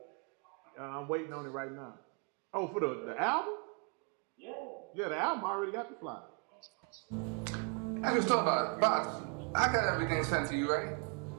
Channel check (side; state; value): left; quieter; 37.7 dB